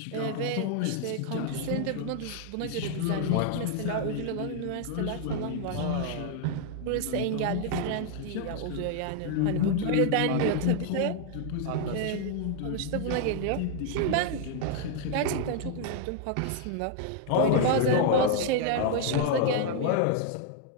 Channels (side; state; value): both; different; correlation 0.00